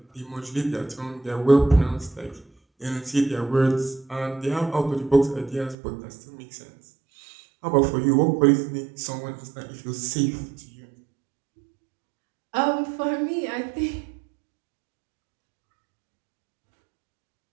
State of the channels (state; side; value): drops out; left; at 5.8 s